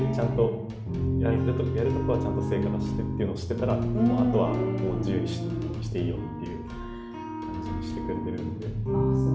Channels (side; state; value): both; identical; correlation 1.00